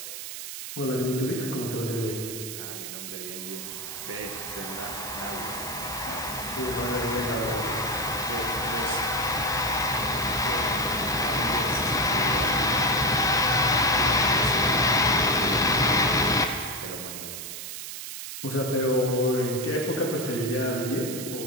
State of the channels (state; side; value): noise; right; hiss, 8 dB below the sound